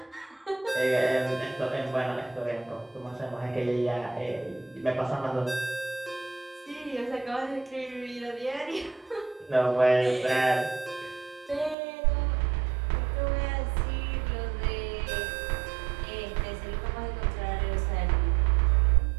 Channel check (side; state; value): left; drops out; at 11.8 s